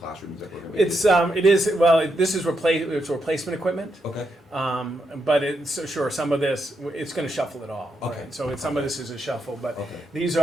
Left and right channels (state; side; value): normal; both; correlation 0.82